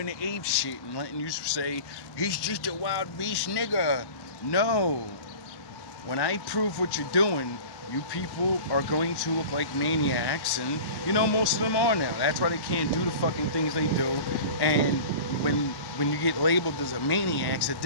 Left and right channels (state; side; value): late; right; 1.1 ms